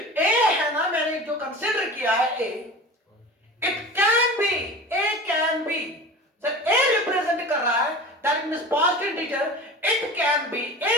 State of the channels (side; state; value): both; normal; correlation 0.34